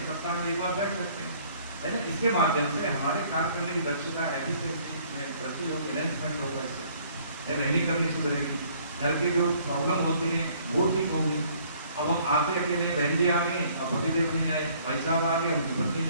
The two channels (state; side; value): inverted; both; correlation -0.59